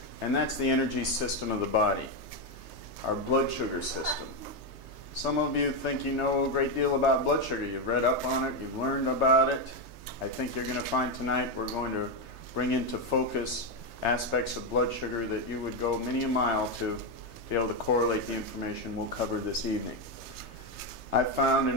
And that's the energy system of the body, our blood sugar system. Some of you think you know a great deal about blood sugar. You've read up on it, you've learned about it. I think you're going to find tonight we're going to bring into focus aspects of blood sugar that you would go many a mile to be able to correlate the information we'll cover this evening. I've found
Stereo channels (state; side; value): late; left; 3.3 ms